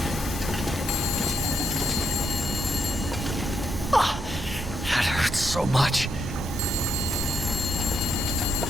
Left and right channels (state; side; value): normal; both; correlation 0.77